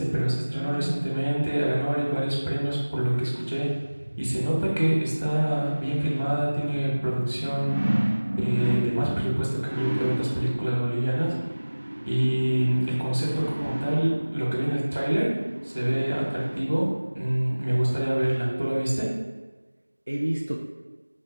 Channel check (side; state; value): both; inverted; correlation -1.00